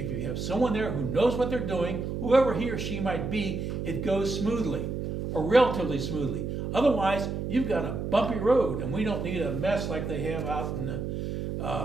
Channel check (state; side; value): noise; right; hum, 3 dB below the sound